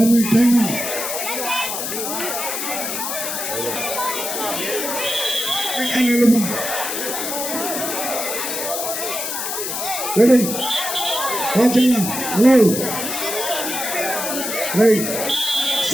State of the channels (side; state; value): left; noise; hiss, 3 dB below the sound